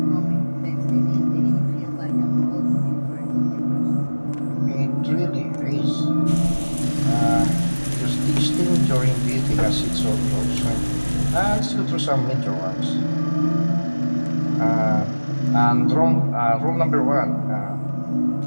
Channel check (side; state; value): both; inverted; correlation -1.00